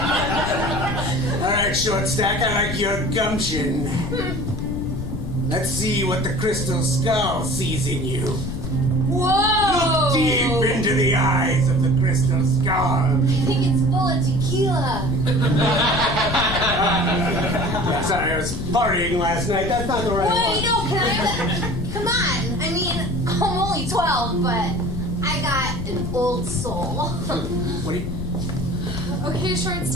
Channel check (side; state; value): left; noise; rumble, 5 dB below the sound